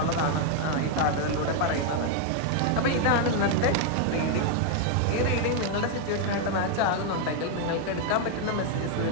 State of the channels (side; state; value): both; different; correlation 0.00